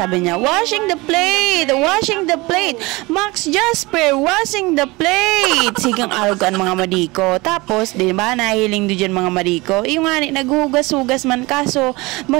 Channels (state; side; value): quieter; left; 23.1 dB